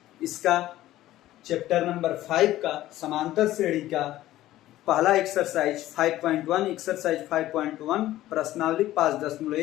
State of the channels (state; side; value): quieter; right; 14.8 dB